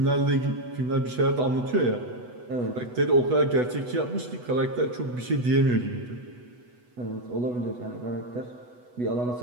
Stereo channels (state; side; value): late; left; 8.1 ms